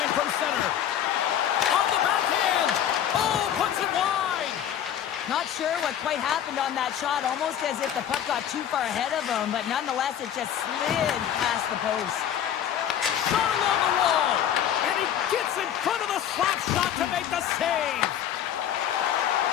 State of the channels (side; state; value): right; quieter; 10.0 dB